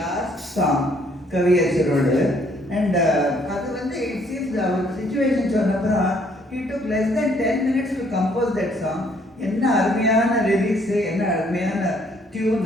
சாங் கவியரசரோடு. அண்ட் அது வந்து இட் சீம்ஸ் அவர் சுச்சுவேஷன் சொன்னப்புறம் he took less than 10 minutes to compose that song. என்ன அருமையான லிரிக்ஸு, என்ன அருமையான டியூன்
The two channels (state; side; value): normal; both; correlation 0.65